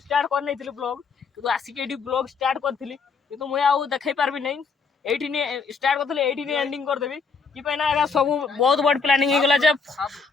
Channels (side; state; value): right; quieter; 5.0 dB